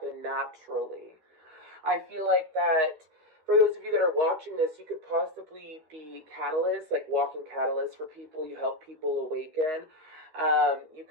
naturally. I feel like that for those of you that are watching this, you could possibly be catalysts, like walking catalysts for people. You help people awaken. You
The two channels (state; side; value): late; left; 13 ms